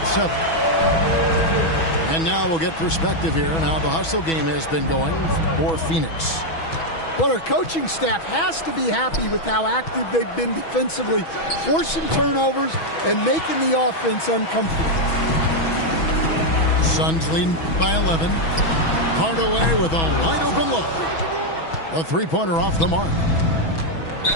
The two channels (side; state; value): right; late; 6.2 ms